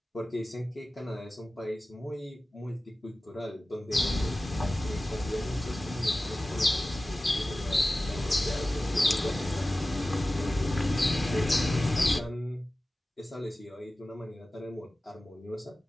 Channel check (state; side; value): normal; both; correlation 0.96